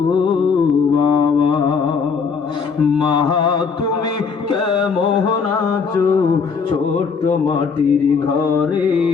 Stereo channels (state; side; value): quieter; right; 5.6 dB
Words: বাবা, মা তুমি কেমন আছো ছোট্ট মাটির ঘরে,